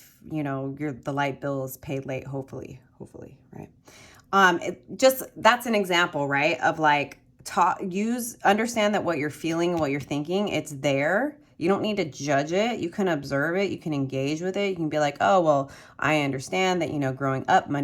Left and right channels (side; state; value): both; identical; correlation 1.00